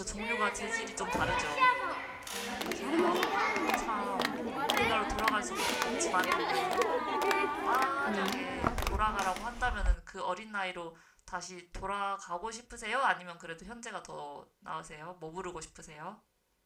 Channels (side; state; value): both; identical; correlation 1.00